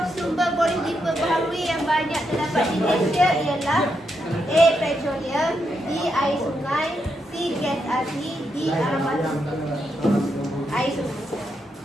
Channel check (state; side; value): normal; both; correlation 0.82